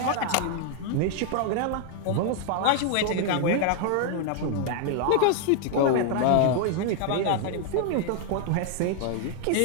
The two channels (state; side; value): different; both; correlation 0.00